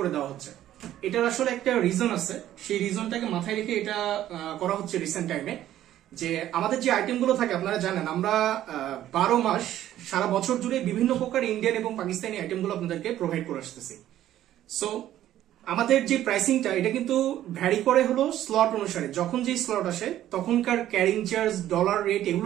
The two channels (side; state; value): left; quieter; 12.6 dB